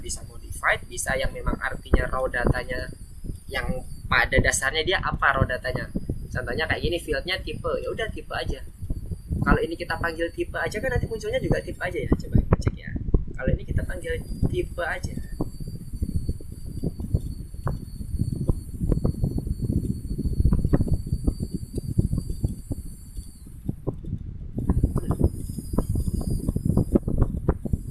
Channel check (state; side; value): identical; both; correlation 1.00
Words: bisa modified, bisa yang memang artinya raw datanya yang pada dasarnya dia apa raw datanya. Contohnya kayak gini, field-nya tipe, ya udah tipe aja. Kalau ini kita panggil tipe aja kan nanti munculnya juga tipe aja ya. Coba kita cek ya. Kalau ini kita panggil tipe aja.